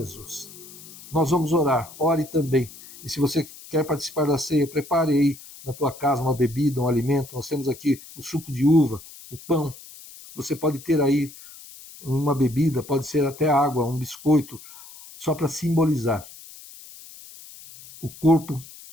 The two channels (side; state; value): left; noise; hiss, 18 dB below the sound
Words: Nós vamos orar, ore também. E se você quer participar da ceia, prepare aí na tua casa uma bebida, um alimento. Nós temos aqui o suco de uva, o pão. Você pode ter aí uma bebida, pode ser até água, um biscoito, só para simbolizar o corpo